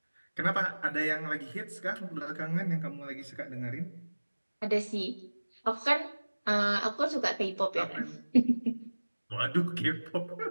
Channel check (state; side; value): inverted; both; correlation -1.00